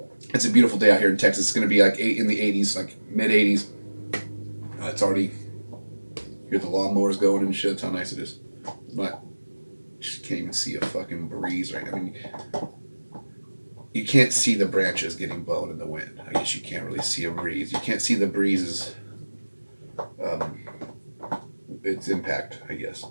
it's a beautiful day out here in Texas. It's going to be like in the 80s, like mid 80s. It's already. Hear the lawnmowers going and shit. That's how nice it is. But just can't even see a fucking breeze right now. I mean, you can't see the branches getting blown in the wind. I guess you can't really see a breeze. You can't see the breezes. Its impact, I guess.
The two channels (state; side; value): inverted; both; correlation -1.00